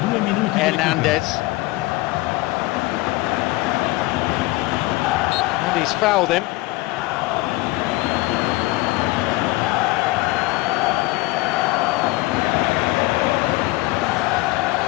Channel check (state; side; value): quieter; right; 20.4 dB